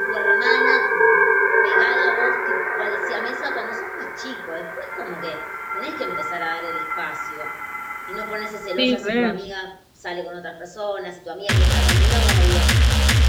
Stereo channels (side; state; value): both; identical; correlation 1.00